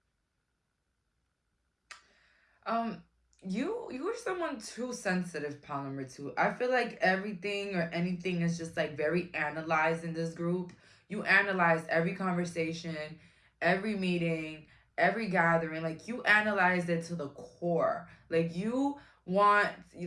You're someone too sensitive, pal number 2. I feel like everything or anything is just like very analyzed in this group. You analyze every conversation, every meeting, every gathering. Like you analyze it to the core. Like you want,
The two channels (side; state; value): both; identical; correlation 1.00